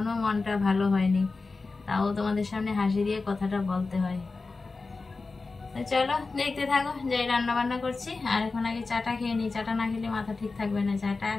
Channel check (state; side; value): quieter; right; 3.9 dB